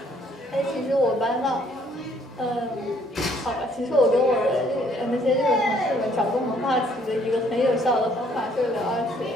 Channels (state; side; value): normal; both; correlation 0.63